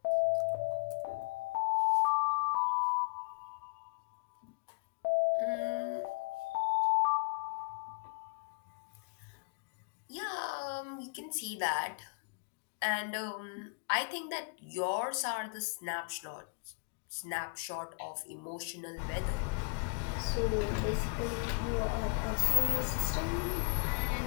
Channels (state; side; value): quieter; right; 33.3 dB